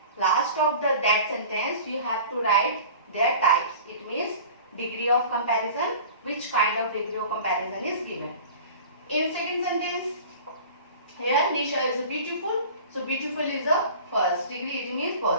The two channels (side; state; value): both; inverted; correlation -0.41